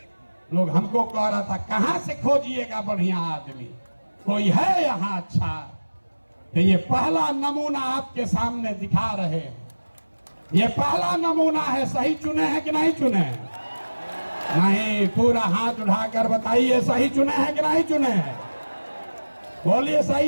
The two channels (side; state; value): both; inverted; correlation -1.00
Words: लोग हमको कह रहा था कहां से खोजिएगा बढ़िया आदमी, कोई है यहाँ अच्छा? तो ये पहला नमूना आपके सामने दिखा रहे हैं। ये पहला नमूना है। सही चुने हैं कि नहीं चुने हैं? नहीं, पूरा हाथ उठाकर बताइए सही चुने हैं कि नहीं चुने हैं? बोलिए